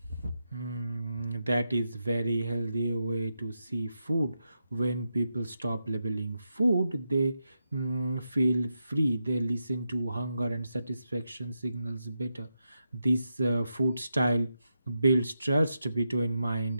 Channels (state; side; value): inverted; both; correlation -0.87